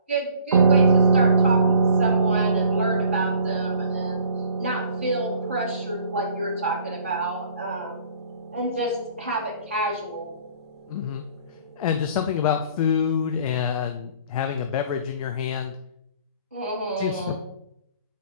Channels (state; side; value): inverted; both; correlation -0.54